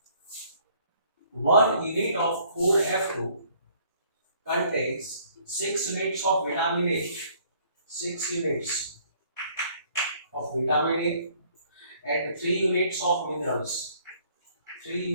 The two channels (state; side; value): inverted; both; correlation -0.61